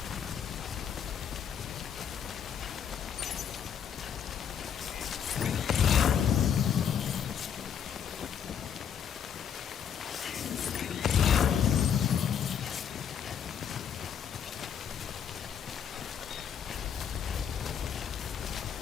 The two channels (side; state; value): right; quieter; 8.1 dB